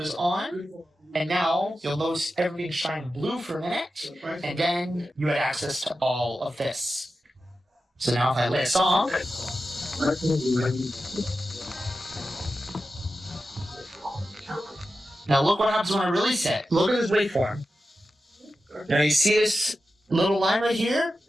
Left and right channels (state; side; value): normal; both; correlation 0.92